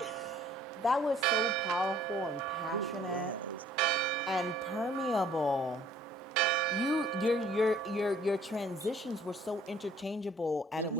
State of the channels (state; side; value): normal; both; correlation 0.58